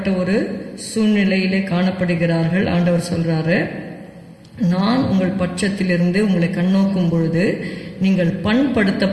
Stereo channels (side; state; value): both; identical; correlation 1.00